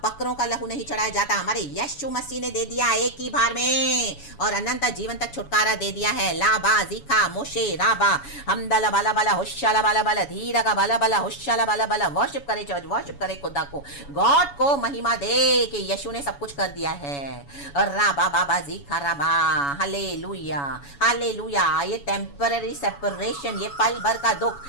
बकरों का लहू नहीं चढ़ाया जाता, हमारे यीशु मसीह ने दे दिया एक ही बार में, और अनंत जीवन तक छुटकारा दे दिया है। लाबा जीखा मोशे राबा हमदला बाला बाला होशाला बाला बाला धीरा का बाला बाला होशाला बाला बाला। वर्शिप करे चर्च, वर्शिप करे खुदा को, गॉड को महिमा दे कि यीशु ने सब कुछ कर दिया है। राबा बाबा जीखा राबा, हालेलुया हालेलुया। ये टेम्पररी सेपरेशन, ये पल भर का दुख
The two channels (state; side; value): late; right; 7.1 ms